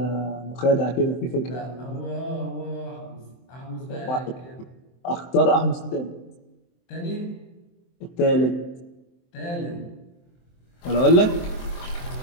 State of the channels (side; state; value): right; late; 23 ms